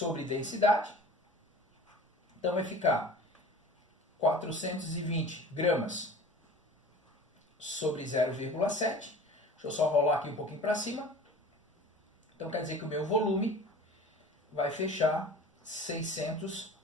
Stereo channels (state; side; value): normal; both; correlation 0.41